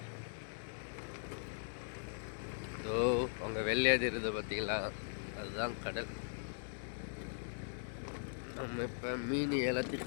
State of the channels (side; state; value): right; silent; digital silence